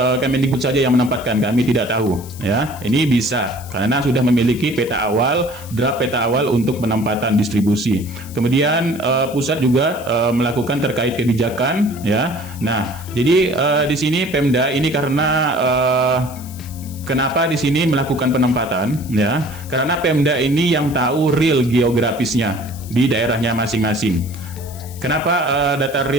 Kemendikbud saja yang menempatkan, kami tidak tahu ya. Ini bisa karena sudah memiliki peta awal, draft peta awal untuk penempatan distribusi. Kemudian pusat juga melakukan terkait kebijakan ya. Nah, jadi di sini Pemda ini karena kenapa di sini melakukan penempatan ya? Karena Pemda ini yang tahu real geografisnya di daerahnya masing-masing. Kenapa data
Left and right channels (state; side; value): noise; left; hiss, 18 dB below the sound